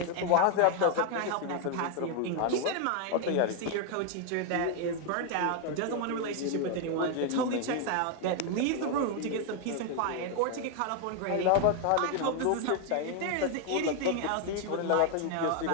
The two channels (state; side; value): different; both; correlation 0.01